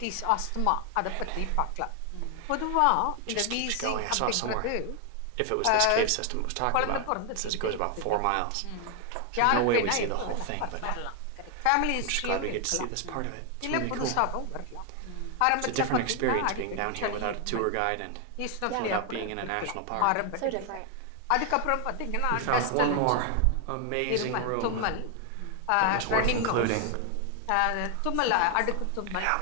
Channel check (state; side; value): different; both; correlation 0.00